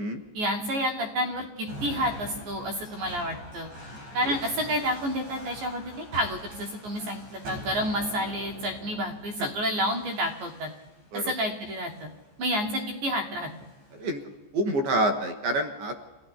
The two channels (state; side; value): late; left; 14 ms